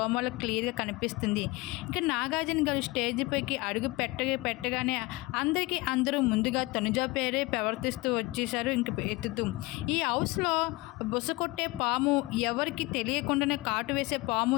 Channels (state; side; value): quieter; right; 21.9 dB